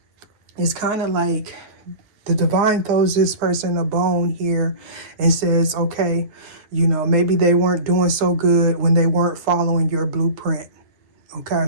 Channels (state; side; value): late; left; 9.5 ms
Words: it's kind of like the divine throws this person a bone here and says, okay, maybe they weren't doing so good when they weren't following your blueprint.